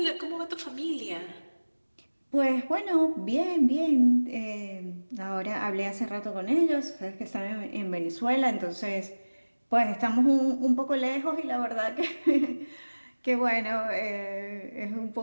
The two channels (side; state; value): both; inverted; correlation -1.00